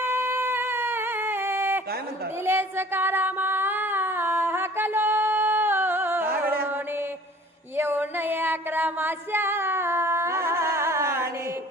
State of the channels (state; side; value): normal; both; correlation 0.50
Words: काय म्हणतात? दिले सकारामा हकलो येऊन 11 माशाने